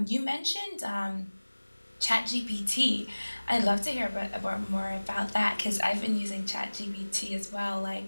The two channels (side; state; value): both; inverted; correlation -1.00